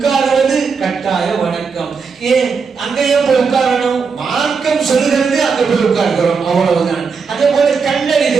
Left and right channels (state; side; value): quieter; left; 5.4 dB